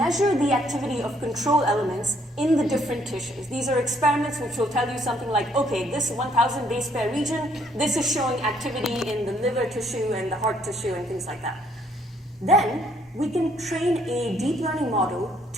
the activity of control elements in the different tissues. These are experiments which will tell you something like, okay, this 1000 base pair region, this is showing activity in the liver tissue and the heart tissue and things like that. Then we can train a deep learning model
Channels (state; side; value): normal; both; correlation 0.66